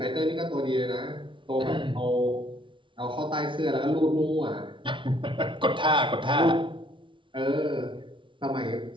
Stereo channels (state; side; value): late; left; 0.24 ms